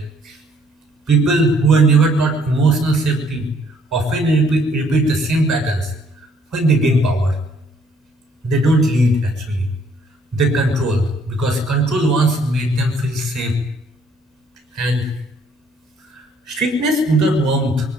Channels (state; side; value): normal; both; correlation 0.64